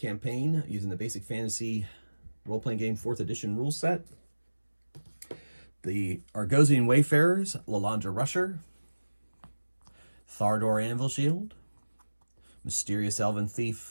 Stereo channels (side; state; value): both; inverted; correlation -1.00